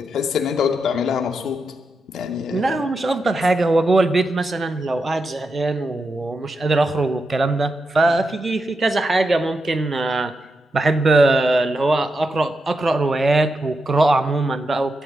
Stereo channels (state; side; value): normal; both; correlation 0.86